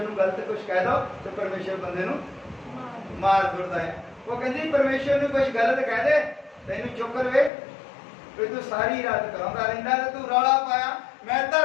ਨੂੰ ਗਲਤ ਕੁਝ ਕਹਿ ਦੋ ਤੇ ਪਰਮੇਸ਼ਰ ਬੰਦੇ ਨੂੰ ਮਾਰ ਦਿੰਦਾ ਹੈ ਉਹ ਕਹਿੰਦੀ ਪਰਮੇਸ਼ਰ ਨੂੰ ਕੁਝ ਗਲਤ ਕਹਿ ਦੇ ਤੈਨੂੰ ਚੁੱਕ ਲਵੇ ਵੀ ਤੂੰ ਸਾਰੀ ਰਾਤ ਕਰਾਉਂਦਾ ਰਹਿੰਦਾ ਤੇ ਤੂੰ ਰੌਲਾ ਪਾਇਆ ਮੈਂ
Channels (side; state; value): right; drops out; at 7.5 s